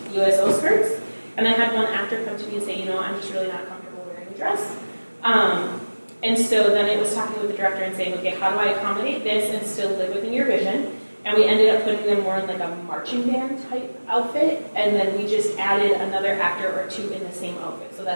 USO skirts, and I had one actor come to me and say, I'm just really not comfortable wearing a dress. And so then it was talking with the director and saying, okay, how do I accommodate this and still live within your vision? and we ended up putting them more in like a marching band type outfit, and then we just added another actor or two in the same outfit so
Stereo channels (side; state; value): both; inverted; correlation -1.00